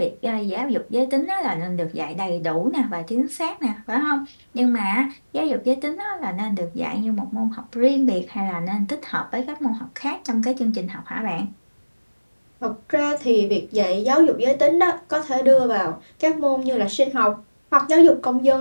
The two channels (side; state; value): both; inverted; correlation -1.00